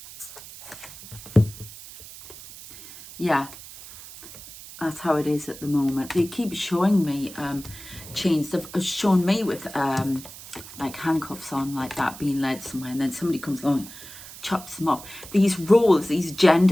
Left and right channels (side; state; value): right; noise; hiss, 15 dB below the sound